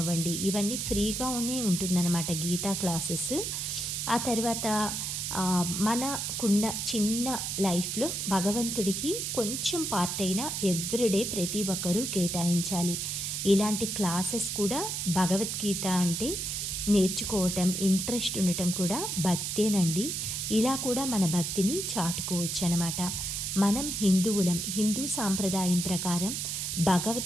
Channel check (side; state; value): right; noise; hiss, 2 dB below the sound